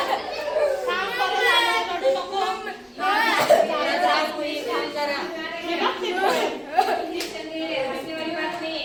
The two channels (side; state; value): both; identical; correlation 1.00